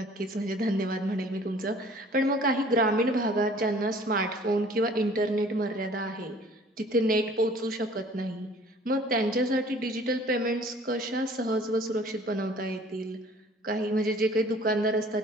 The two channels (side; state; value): both; normal; correlation 0.52